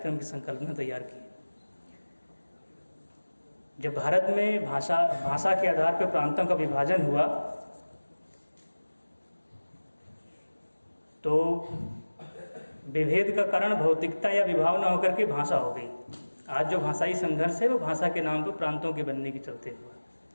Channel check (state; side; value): inverted; both; correlation -1.00